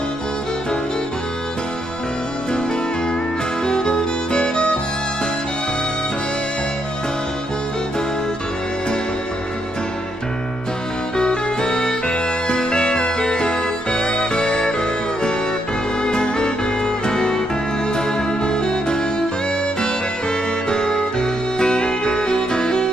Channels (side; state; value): both; normal; correlation 0.77